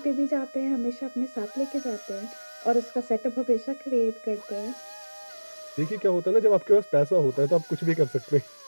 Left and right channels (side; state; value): both; inverted; correlation -1.00